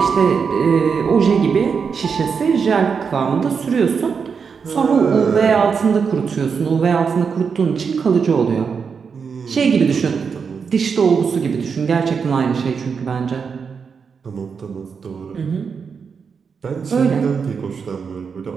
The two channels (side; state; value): left; quieter; 5.9 dB